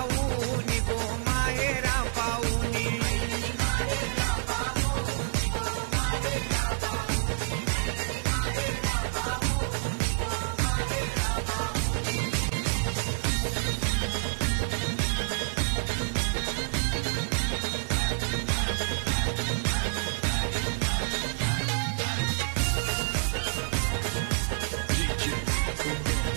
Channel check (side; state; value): left; silent; digital silence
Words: गो, माहेरा पाऊनी.